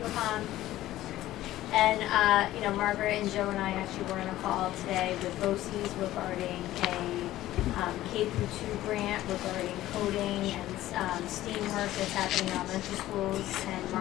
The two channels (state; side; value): quieter; right; 14.9 dB